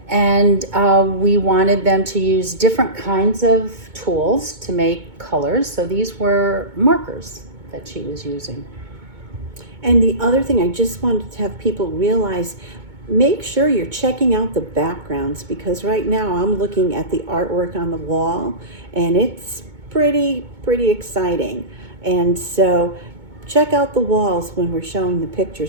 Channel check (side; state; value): left; late; 2.2 ms